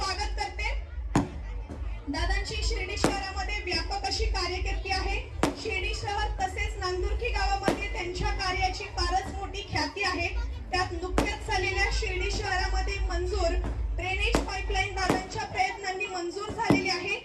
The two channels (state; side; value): identical; both; correlation 1.00